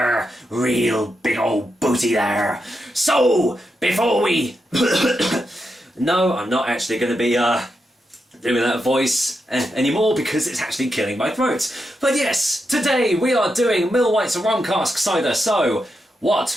Real big old booty there. So, before we... No, I'm not actually going to be, doing that voice anymore because it's actually killing my throat. But yes, today we are doing Millwhites Rum Cask cider, so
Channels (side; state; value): both; normal; correlation 0.85